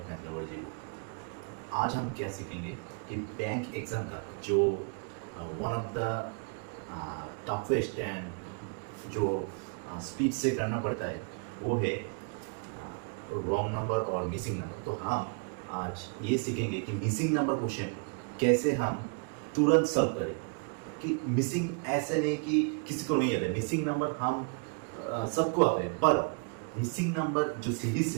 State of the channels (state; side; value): quieter; left; 38.0 dB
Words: math lover ji. आज हम क्या सीखेंगे कि बैंक एग्ज़ाम का जो one of the toughest and जो स्पीड से करना पड़ता है वो है रॉन्ग नंबर और मिसिंग नंबर। तो हम आज ये सीखेंगे कि मिसिंग नंबर क्वेश्चन कैसे हम तुरंत सॉल्व करें। कि मिसिंग ऐसे नहीं कि किसी को नहीं आता है, मिसिंग नंबर हम सबको आता है, पर मिसिंग नंबर जो सीरीज